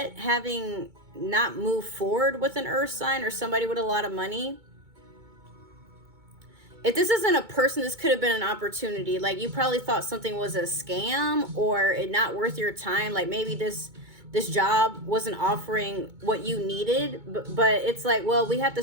having not moved forward with an earth sign or somebody with a lot of money. If this isn't a person, this could have been an opportunity. Like, you probably thought something was a scam or it not worth your time. Like, maybe this job wasn't offering what you needed, but it's like, well, we have to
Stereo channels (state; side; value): late; left; 2.2 ms